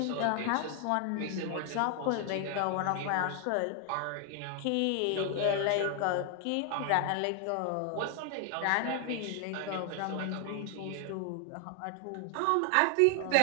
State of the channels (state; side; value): different; both; correlation 0.00